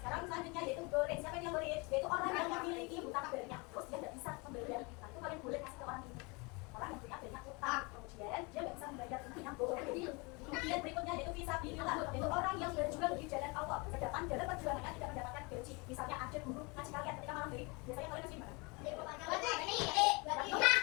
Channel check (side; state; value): right; quieter; 28.6 dB